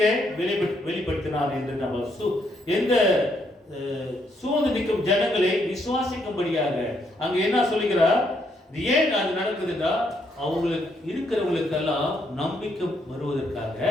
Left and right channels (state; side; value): normal; both; correlation 0.74